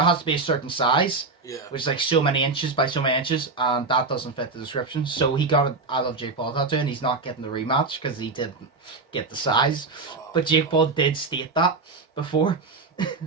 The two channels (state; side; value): quieter; left; 3.9 dB